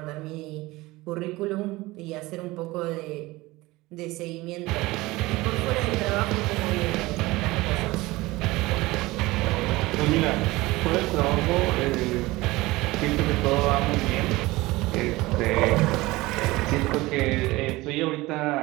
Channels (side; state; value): left; quieter; 20.2 dB